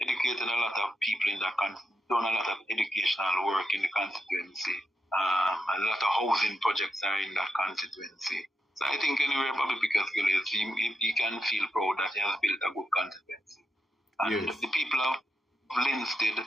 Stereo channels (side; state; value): both; normal; correlation 0.84